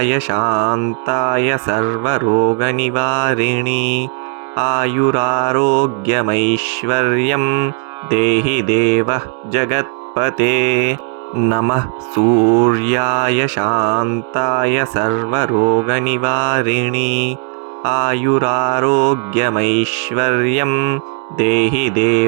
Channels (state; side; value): quieter; left; 38.5 dB